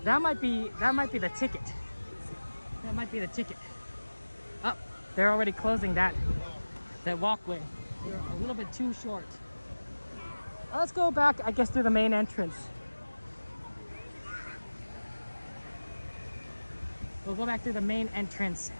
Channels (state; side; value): inverted; both; correlation -1.00